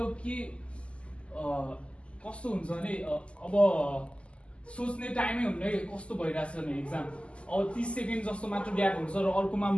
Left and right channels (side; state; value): right; late; 0.055 ms